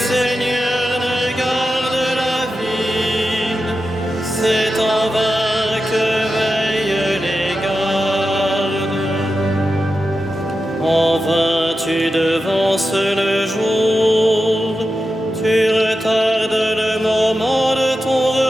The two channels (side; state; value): both; normal; correlation 0.90